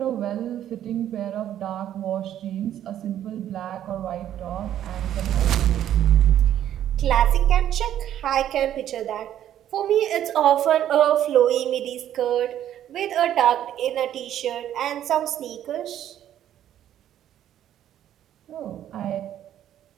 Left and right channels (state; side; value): quieter; left; 11.2 dB